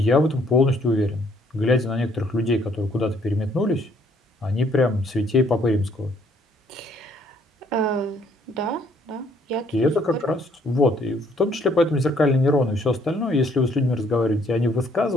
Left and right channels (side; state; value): both; normal; correlation 0.65